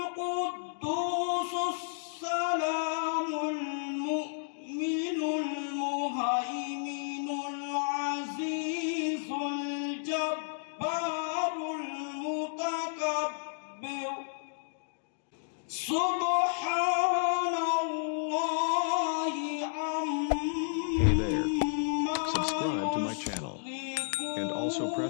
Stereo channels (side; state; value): right; silent; digital silence